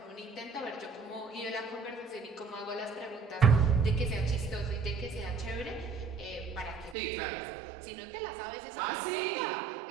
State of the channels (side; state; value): left; drops out; at 7.0 s